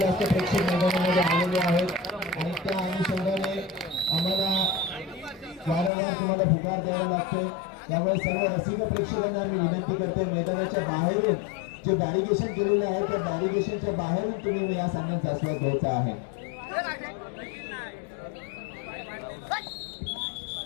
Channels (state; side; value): drops out; right; at 5.9 s